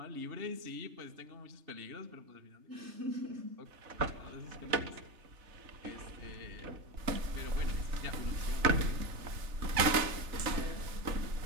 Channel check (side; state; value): left; late; 3.3 ms